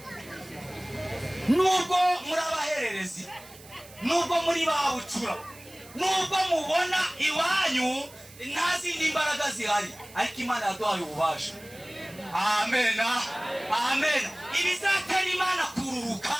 nubwo muri abahererezi, nubwo muri babucura, nubwo mubona iwanyu nta zindi imbaraga zihari, ariko Imana yaduhaye ububasha. Amen. Ibizatera Imana kururuka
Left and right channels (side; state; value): right; noise; hiss, 21 dB below the sound